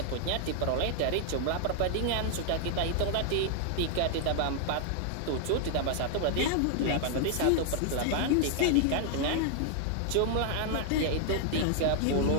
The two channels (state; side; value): different; both; correlation 0.00